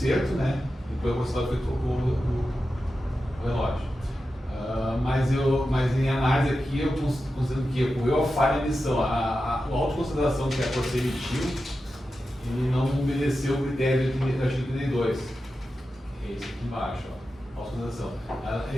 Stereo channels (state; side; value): normal; both; correlation 0.91